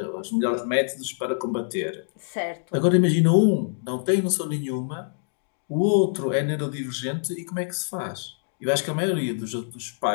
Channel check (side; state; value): right; silent; digital silence